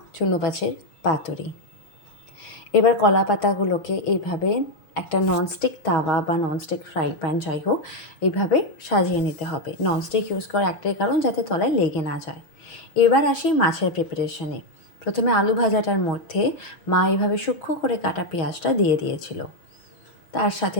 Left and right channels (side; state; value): right; late; 6.4 ms